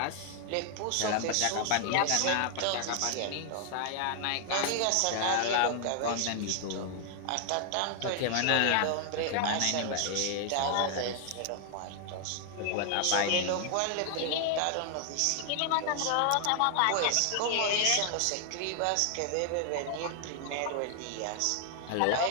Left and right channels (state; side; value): different; both; correlation 0.00